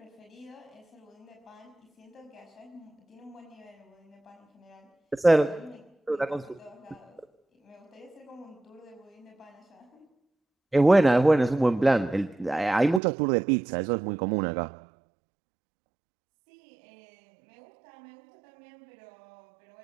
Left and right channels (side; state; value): left; drops out; at 13.0 s